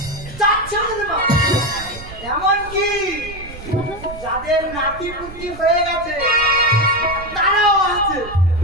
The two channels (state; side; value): noise; right; rumble, 14 dB below the sound